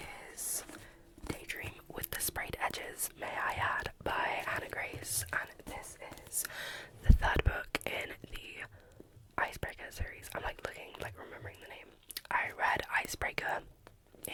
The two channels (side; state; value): both; identical; correlation 1.00